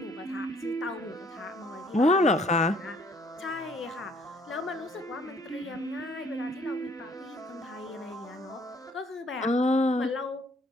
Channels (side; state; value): both; normal; correlation 0.62